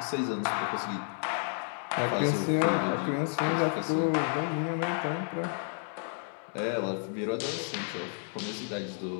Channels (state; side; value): silent; right; 57 dB below the other